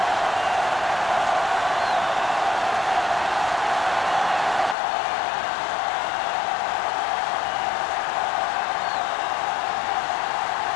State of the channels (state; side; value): drops out; right; at 4.8 s